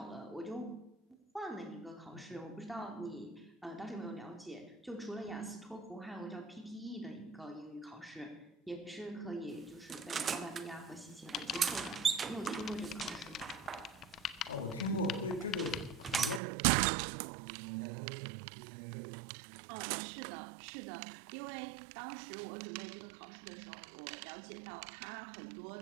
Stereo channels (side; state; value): left; drops out; at 16.4 s